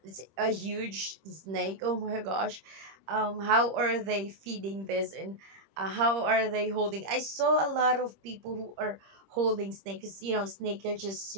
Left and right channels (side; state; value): left; late; 26 ms